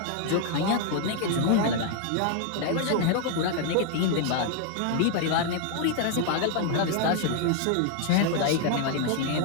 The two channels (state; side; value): different; both; correlation 0.00